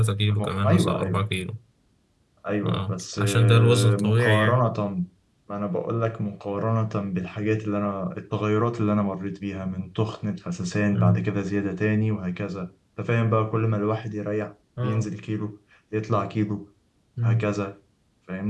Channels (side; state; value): both; identical; correlation 1.00